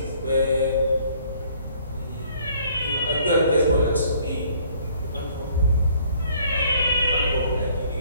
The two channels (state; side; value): inverted; both; correlation -0.59